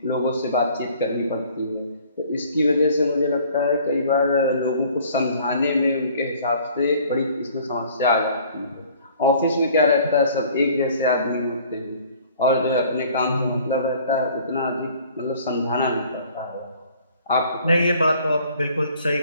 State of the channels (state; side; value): inverted; both; correlation -0.54